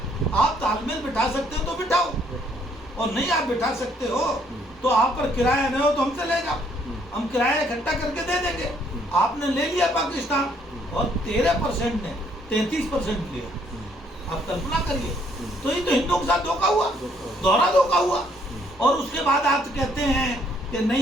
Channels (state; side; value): normal; both; correlation 0.67